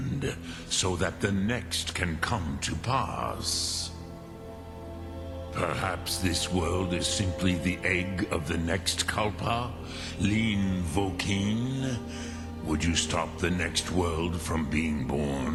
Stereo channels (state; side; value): identical; both; correlation 1.00